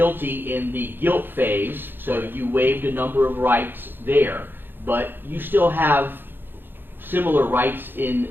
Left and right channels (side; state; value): left; late; 0.098 ms